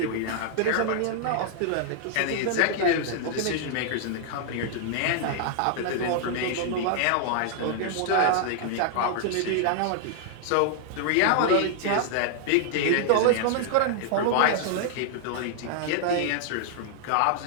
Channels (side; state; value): both; different; correlation -0.01